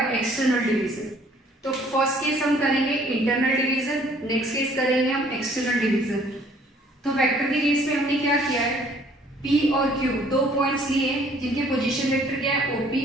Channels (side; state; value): both; normal; correlation 0.58